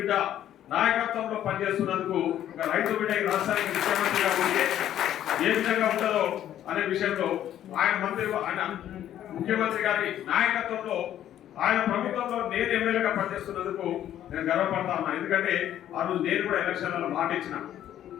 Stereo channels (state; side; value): quieter; right; 11.4 dB